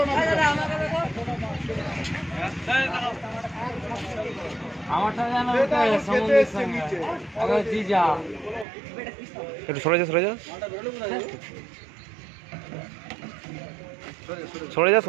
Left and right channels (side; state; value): left; drops out; at 8.7 s